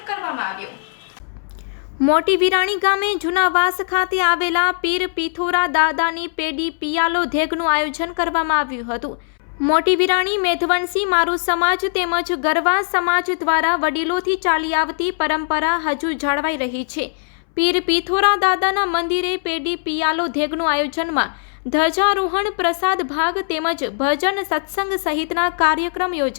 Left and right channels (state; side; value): silent; right; 64 dB below the other